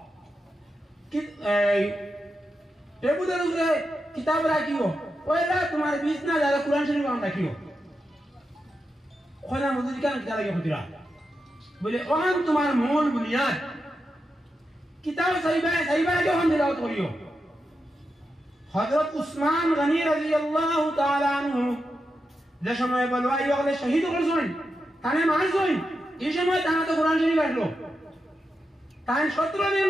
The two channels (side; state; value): both; normal; correlation 0.88